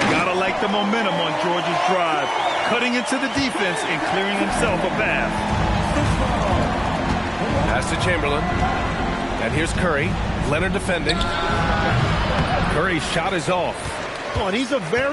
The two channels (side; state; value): both; identical; correlation 1.00